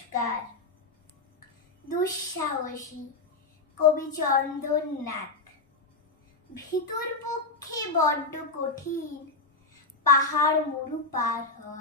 দুঃসাহসী কবি চন্দননাথ। ভিতর পক্ষে বড্ড কঠিন পাহাড় মরু পার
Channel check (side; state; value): right; quieter; 3.5 dB